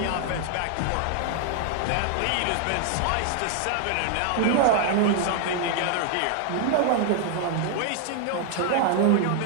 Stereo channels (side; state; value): both; different; correlation 0.00